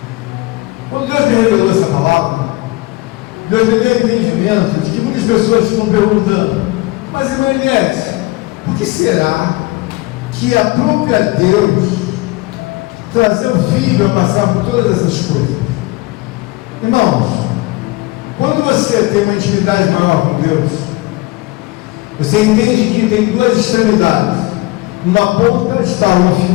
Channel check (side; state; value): right; quieter; 21.2 dB